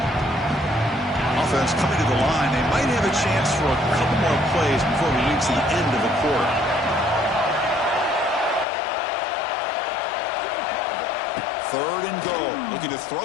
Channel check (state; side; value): drops out; right; at 8.7 s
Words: Offense coming to the line. They might have a chance for a couple more plays before we reach the end of the quarter. Third and goal. Looking to